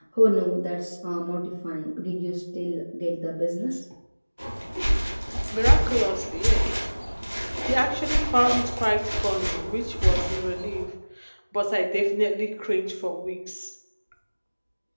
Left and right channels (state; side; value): inverted; both; correlation -1.00